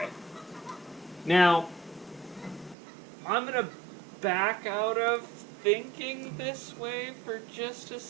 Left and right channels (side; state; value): left; drops out; at 2.8 s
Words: Now, I'm going to back out of thinking this way for just a